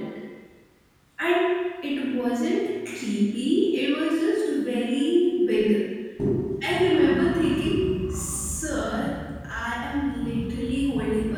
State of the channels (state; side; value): identical; both; correlation 1.00